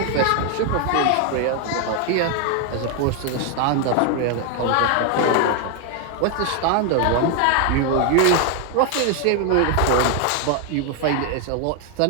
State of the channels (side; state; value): both; different; correlation 0.00